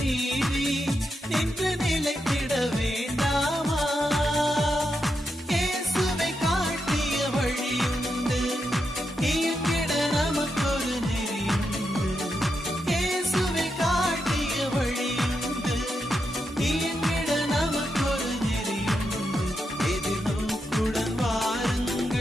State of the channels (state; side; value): normal; both; correlation 0.85